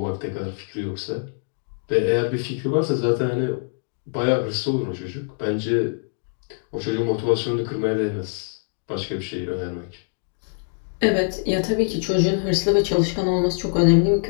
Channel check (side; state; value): right; silent; 63 dB below the other